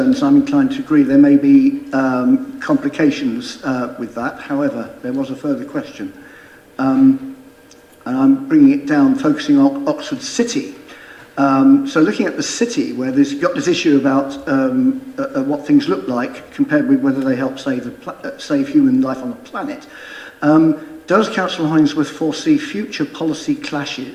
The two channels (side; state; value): both; identical; correlation 1.00